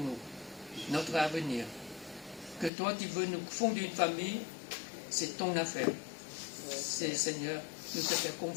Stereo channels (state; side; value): drops out; right; at 2.7 s